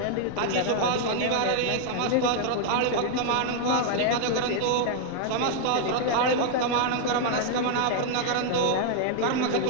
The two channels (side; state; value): both; different; correlation 0.00